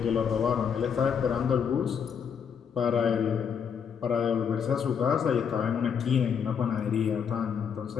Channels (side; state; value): right; quieter; 7.2 dB